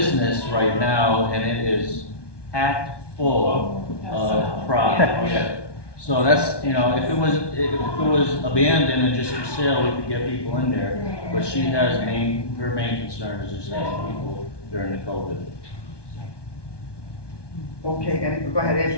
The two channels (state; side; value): late; right; 1.2 ms